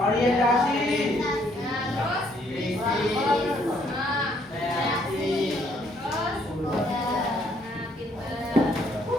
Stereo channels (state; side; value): normal; both; correlation 0.68